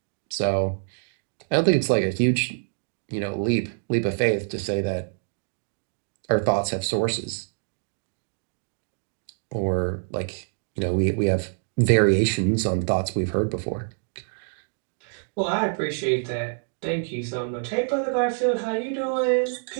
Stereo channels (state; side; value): silent; left; digital silence